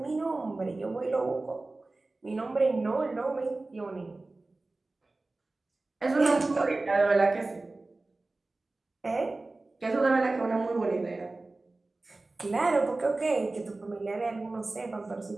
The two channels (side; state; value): left; quieter; 3.2 dB